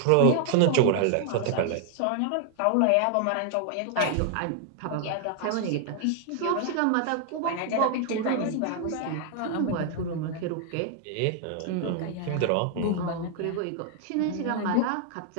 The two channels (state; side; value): different; both; correlation 0.00